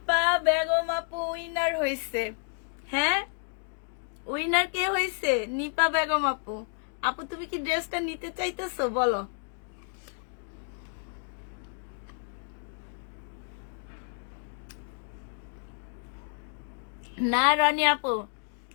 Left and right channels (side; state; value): right; silent; 58 dB below the other